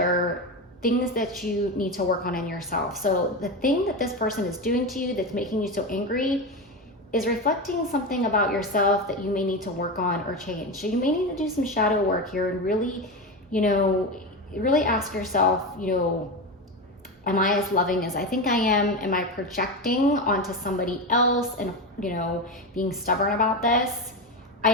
things that you need to work on in yourself. So the thing that this person is doing to you that's making you so angry is reflecting something about yourself that you may need to work on or change. So you may need to do some shadow work here and really, really ask yourself, am I as loving as I think I am? Am I projecting onto somebody else and, being stubborn about this? I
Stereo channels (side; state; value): both; normal; correlation 0.18